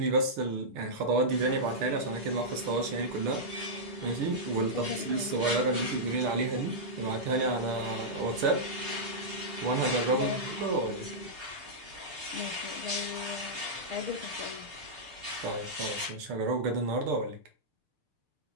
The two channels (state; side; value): late; left; 6.6 ms